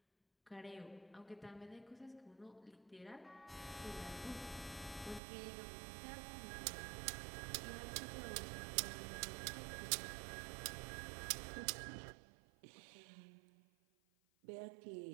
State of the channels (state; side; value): drops out; left; at 5.2 s